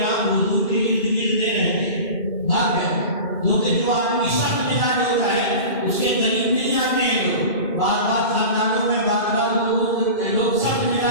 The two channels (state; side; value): late; right; 2.5 ms